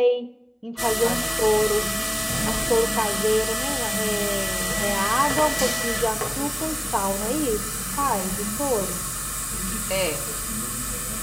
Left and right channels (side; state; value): both; identical; correlation 1.00